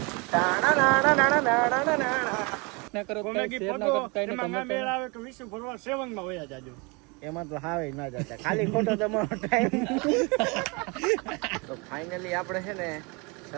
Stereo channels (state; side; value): quieter; left; 29.2 dB